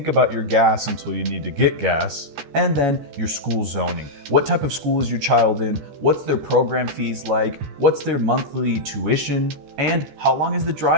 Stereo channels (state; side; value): late; left; 14 ms